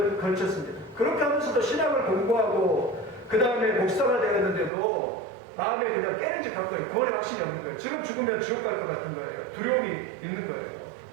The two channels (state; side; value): drops out; left; at 4.7 s